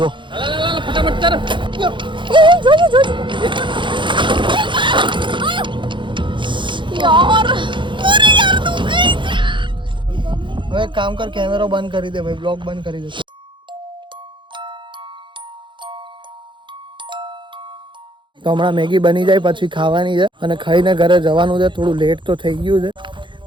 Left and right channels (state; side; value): late; left; 0.23 ms